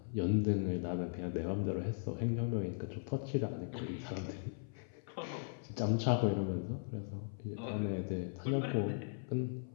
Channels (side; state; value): right; silent; 52 dB below the other